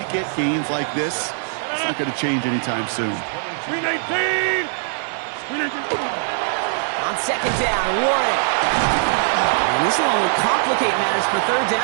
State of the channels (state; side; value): silent; left; 61 dB below the other